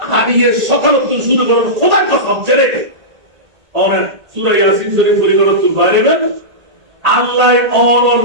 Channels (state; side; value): late; left; 1.8 ms